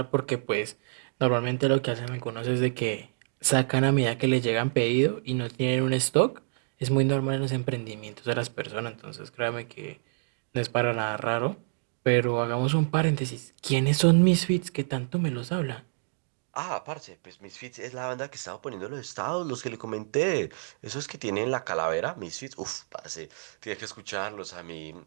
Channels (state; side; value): silent; left; digital silence